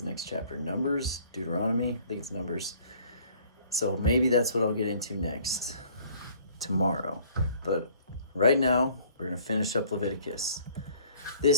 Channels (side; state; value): both; inverted; correlation -0.55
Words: the next chapter? Numbers? Deuteronomy? I think it's Numbers. So maybe that's what I'll get into next tomorrow. But right now, we're going to finish up Leviticus.